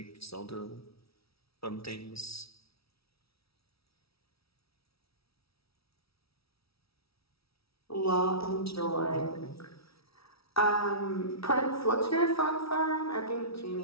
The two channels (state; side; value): late; right; 0.76 ms